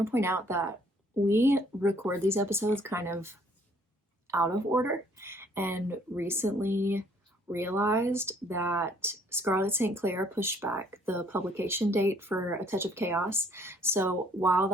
to point out that we record these episodes kind of out of order, and recently realized that Scarlet St. Clair pushed back the publication date for A Touch of Chaos. So while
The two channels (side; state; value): both; normal; correlation 0.62